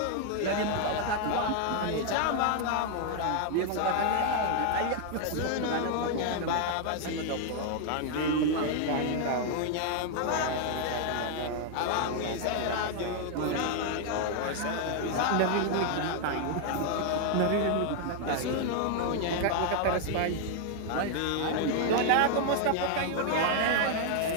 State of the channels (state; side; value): different; both; correlation 0.00